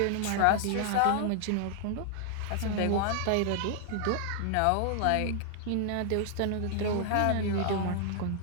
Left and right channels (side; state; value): both; different; correlation 0.00